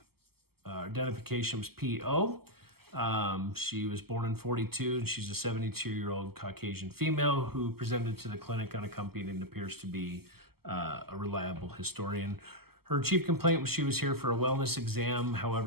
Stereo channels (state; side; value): late; left; 0.96 ms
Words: identification was PO. She was born in 42, and she's a 72-year-old Caucasian female who presented to the clinic unaccompanied and appears to be a reliable historian. Her chief complaint was she was here for a wellness exam.